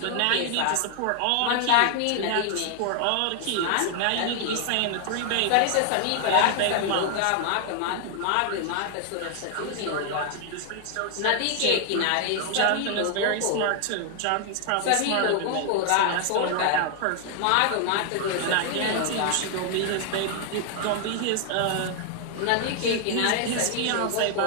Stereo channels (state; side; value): different; both; correlation 0.00